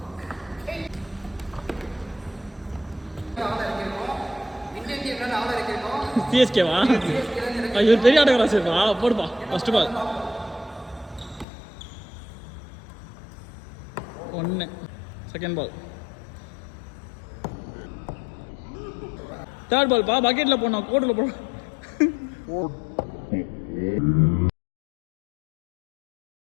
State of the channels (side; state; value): right; drops out; at 11.5 s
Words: சிஎஸ்கேவா? இவர் பெரிய ஆட்டக்காரா சரிப்பா. போடுப்பா. First ball 1. Second ball. Third ball பா. பக்கெட்டில் போடணும், கோட்டில் போடணும்.